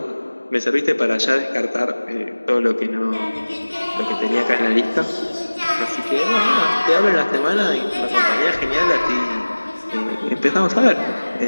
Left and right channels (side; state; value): both; inverted; correlation -1.00